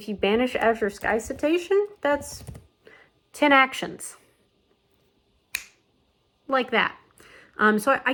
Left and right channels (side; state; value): both; identical; correlation 1.00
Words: you banish Azure Sky Citation, that's 10 actions. Like that. So I